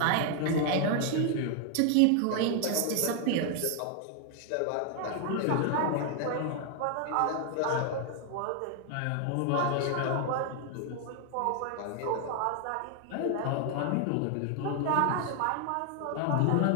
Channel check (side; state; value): both; different; correlation 0.00